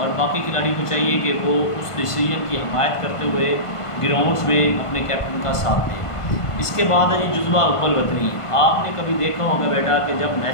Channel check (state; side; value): late; right; 1.5 ms